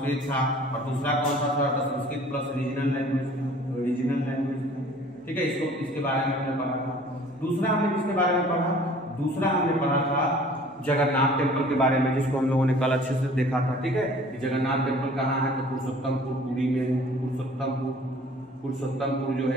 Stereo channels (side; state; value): both; normal; correlation 0.50